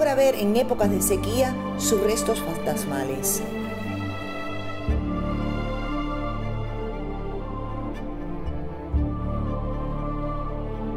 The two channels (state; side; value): identical; both; correlation 1.00